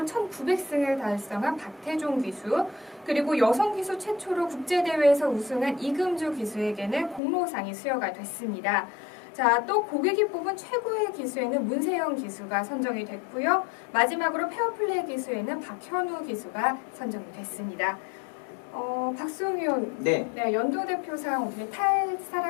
1900승을 달성한 박태종 기수, 그리고 여성 기수 최초로 국제대회에서 우승한 이금주 기수에게는 공로상이 수여가 됐습니다. 자, 또 고객이 뽑은 최고의 기수에는 문세영 기수가 선정이 됐고요. 마지막으로 페어플레이 기수에는 박현우 기수가 선정이 됐습니다. 박수홍 의원, 네. 연도 대표상 어떻게 탈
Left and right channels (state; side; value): drops out; right; at 7.2 s